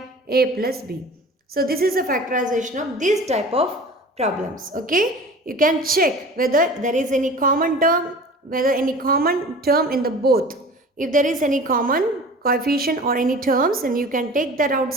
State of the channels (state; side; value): normal; both; correlation 0.40